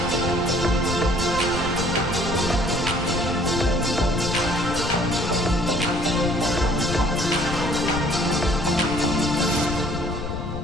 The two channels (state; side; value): noise; left; rumble, 6 dB below the sound